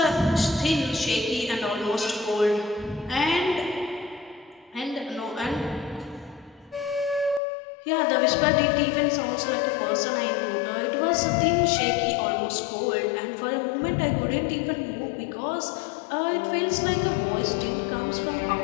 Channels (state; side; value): drops out; right; at 7.4 s